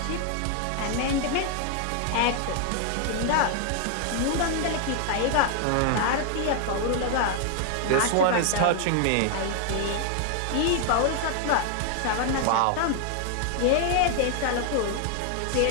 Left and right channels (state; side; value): different; both; correlation 0.00